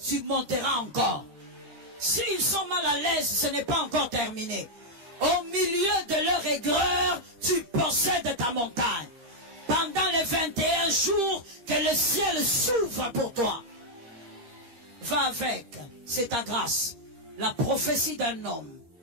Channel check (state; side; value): late; left; 13 ms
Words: tu monteras encore. S'ils sont mal à l'aise, ce n'est pas encore terminé. Au milieu de leur aigreur, tu possèdes ta montagne. Pendant les 21 jours, que le ciel s'ouvre pour toi. Va avec, c'est ta grâce. La prophétie d'un homme.